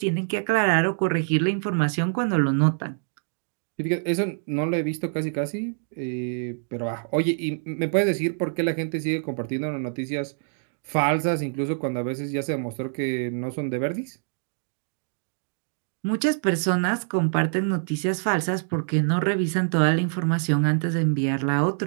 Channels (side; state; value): left; silent; digital silence